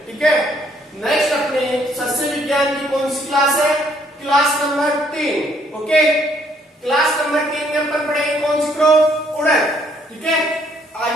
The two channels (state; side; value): normal; both; correlation 0.66